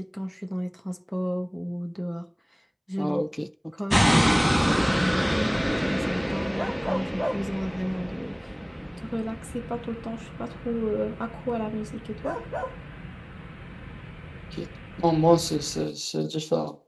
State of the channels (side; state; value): both; identical; correlation 1.00